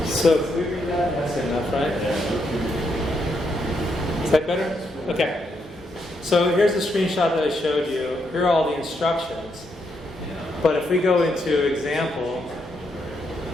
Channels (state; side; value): normal; both; correlation 0.78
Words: So if we read that, that's good enough, right? Is that better? Okay. So here's the screenshot that I showed you. Here are all the instructions. But if we go into example,